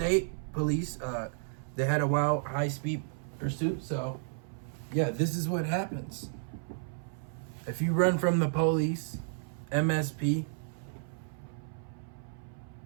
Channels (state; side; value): silent; left; 56 dB below the other